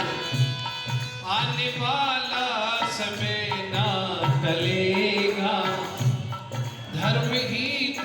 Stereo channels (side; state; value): both; identical; correlation 1.00